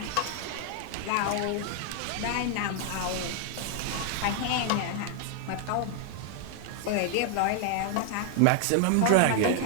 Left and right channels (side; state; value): both; different; correlation 0.00